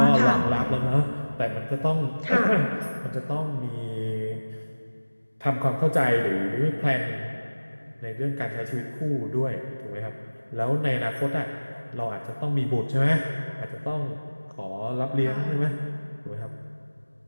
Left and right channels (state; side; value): inverted; both; correlation -1.00